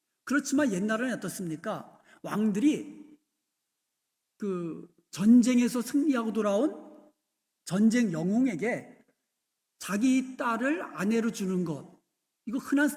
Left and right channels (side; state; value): both; identical; correlation 1.00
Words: 그렇지만 옛날에는 어떻습니까? 왕들이 그 전쟁에서 승리하고 돌아온 전쟁 영웅에게 자기 딸을 아내로 주는 것, 이거 흔한